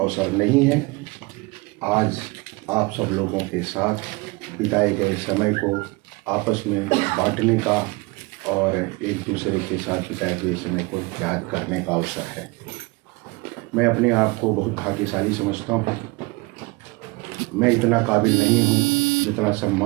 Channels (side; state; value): left; quieter; 25.0 dB